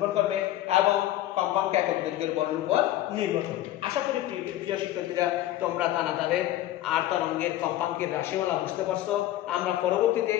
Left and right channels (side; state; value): right; quieter; 14.0 dB